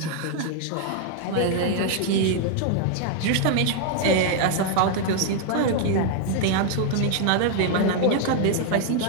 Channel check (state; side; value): different; both; correlation 0.00